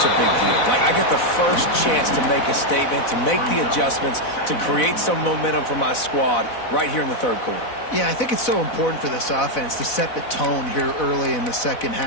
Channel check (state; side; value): late; right; 4.0 ms